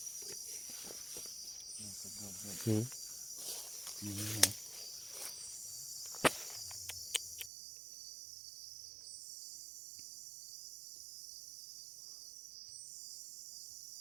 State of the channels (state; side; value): drops out; left; at 7.5 s